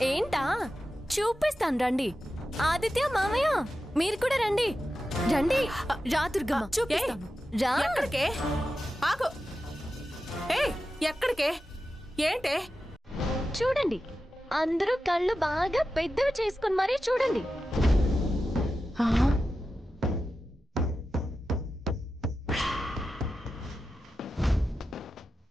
ఏంటా? చూపిస్తాను రండి. ఆదిత్య, మామయ్య మీరు కూడా రండి. రండి రా దుర్గమ్మ, చూపిస్తాను రా. ఎక్కడికే? ఆగు. ఎక్కడికే? ఏంటే? చూడండి, అందరూ కళ్ళు బాగా పెద్దవి చేసుకుని మరీ చూడండి.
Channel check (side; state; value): both; normal; correlation 0.92